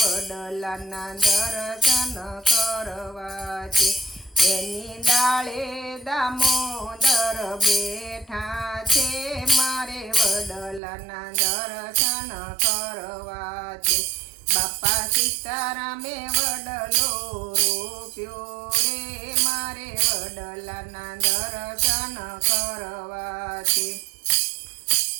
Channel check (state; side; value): drops out; left; at 10.8 s